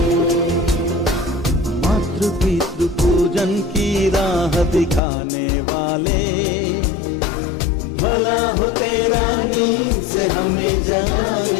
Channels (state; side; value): drops out; right; at 5.0 s